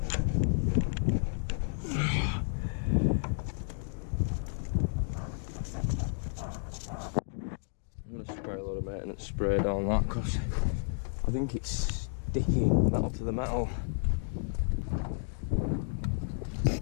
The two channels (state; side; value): silent; right; digital silence